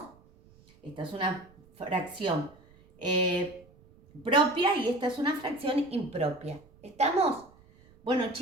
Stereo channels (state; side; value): noise; right; rumble, 28 dB below the sound